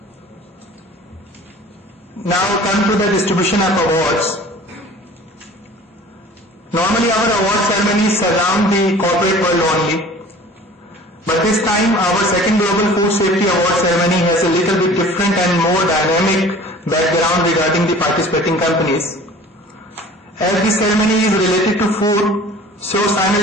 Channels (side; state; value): both; normal; correlation 0.45